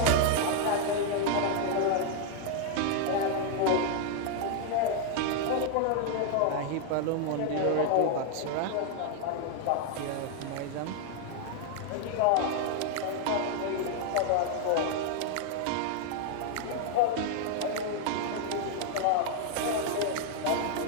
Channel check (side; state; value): both; different; correlation 0.00